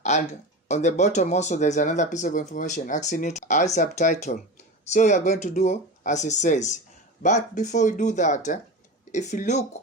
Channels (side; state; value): both; normal; correlation 0.26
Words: and on the bottom also there is another piece of information asking you to add subtitle. So we are going to do as it says. But before we do that, if you look